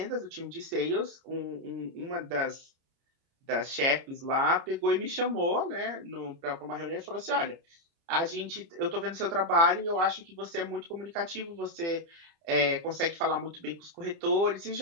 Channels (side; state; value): left; late; 30 ms